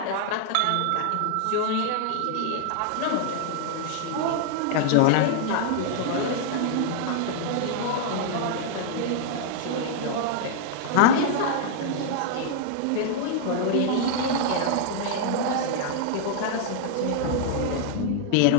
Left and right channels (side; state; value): both; different; correlation -0.01